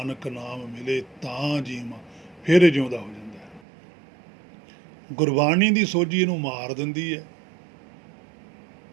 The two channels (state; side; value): drops out; left; at 3.6 s